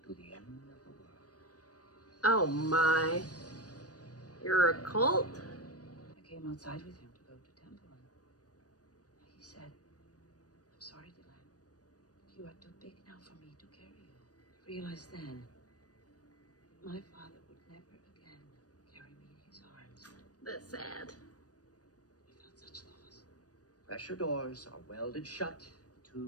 to the end of the world. Oh my. You're a cult? I came outside with him to go to temple, and he said, "I'm sorry, Delenn. You are too big now for me to carry you." I realized then, my father would never again carry me in his arms. That's sad. I felt such loss. Pressure doors are welded shut. The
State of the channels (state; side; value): late; right; 0.68 ms